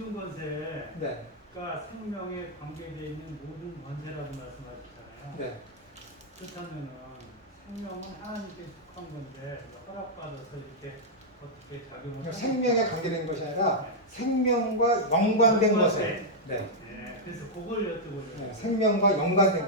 네. 그러니까 생명에 관계되어 있는 모든 권세라고 말씀하셨잖아요. 네. 그렇다면은 생명은 하나님께 속한 건데 허락받아서 이렇게 어떻게 작용을 그러니까 생명에 관계된 것이 아니라 생명과 연관된 것에. 네. 네, 그래서 그걸 여쭤보려고. 네. 생명과 연관된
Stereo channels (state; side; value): normal; both; correlation -0.05